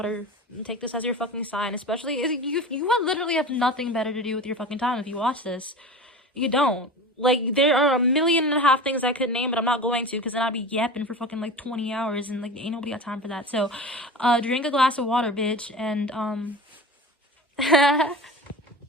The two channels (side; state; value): both; normal; correlation 0.32